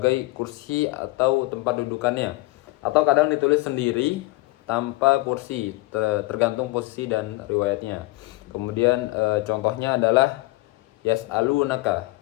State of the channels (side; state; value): right; quieter; 21.4 dB